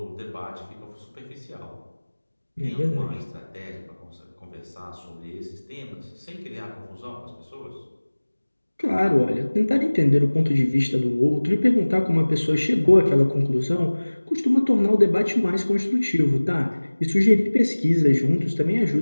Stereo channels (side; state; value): both; inverted; correlation -1.00